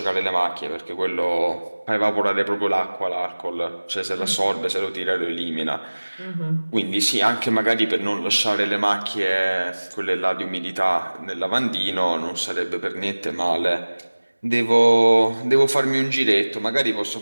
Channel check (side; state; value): both; inverted; correlation -1.00